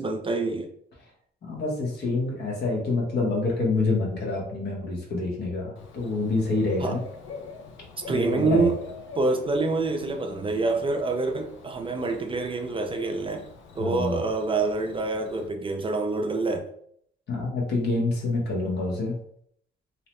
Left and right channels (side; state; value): both; normal; correlation 0.59